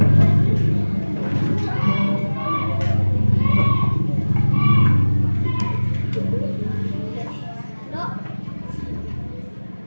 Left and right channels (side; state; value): both; inverted; correlation -1.00